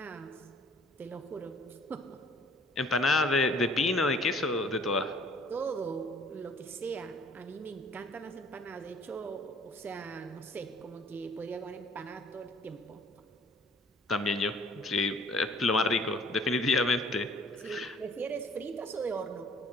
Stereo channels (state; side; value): normal; both; correlation 0.55